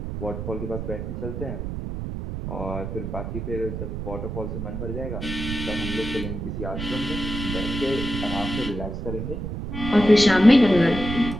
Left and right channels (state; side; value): noise; right; rumble, 5 dB below the sound